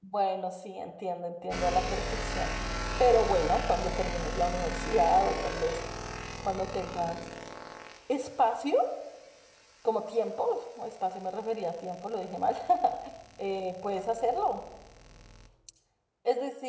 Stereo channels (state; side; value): identical; both; correlation 1.00